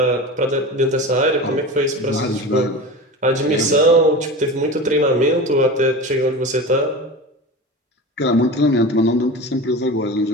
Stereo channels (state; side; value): normal; both; correlation 0.30